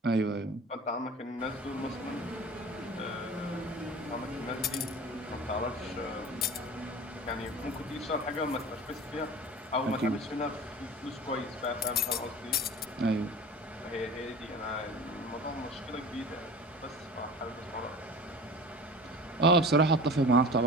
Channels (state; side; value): normal; both; correlation 0.38